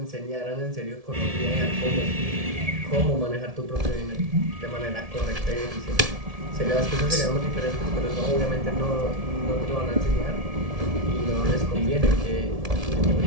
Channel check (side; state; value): left; late; 1.7 ms